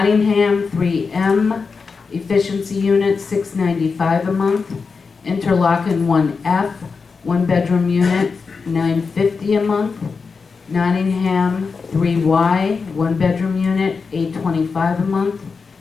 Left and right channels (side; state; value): right; quieter; 4.9 dB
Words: 3M, efficiency unit, $695 a month. Interlaken, 1F, one-bedroom unit, $950 a month. Nottingham, 3Y, one-bedroom unit, $825 a month.